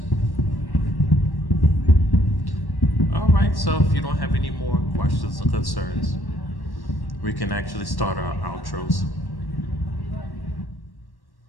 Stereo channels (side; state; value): right; late; 1.1 ms